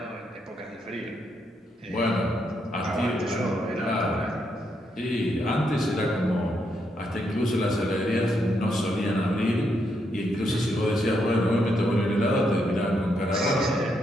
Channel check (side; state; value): both; normal; correlation 0.79